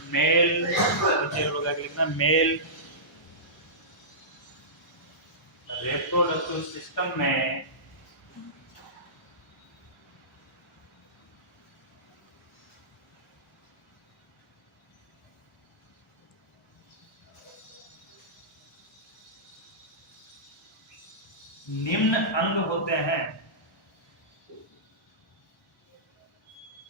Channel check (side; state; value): both; normal; correlation -0.20